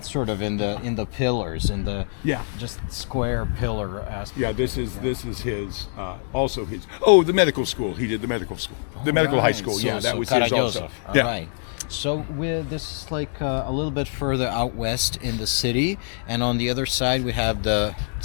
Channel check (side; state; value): right; silent; digital silence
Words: sort of in the pillars, in the just square pillar aspect. Yeah, this is his, also his. Oh, the medical school. He did the medical school, the medical high school. So, that was his also. Right. So this is like a little bit further out west in the city, and on the other side we have the